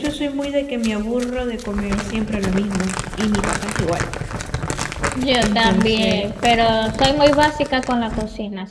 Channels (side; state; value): both; identical; correlation 1.00